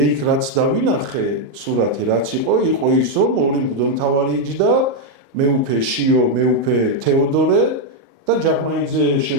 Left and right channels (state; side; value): late; left; 37 ms